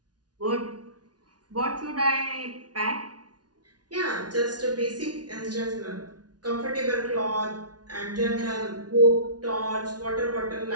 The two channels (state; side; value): late; left; 0.69 ms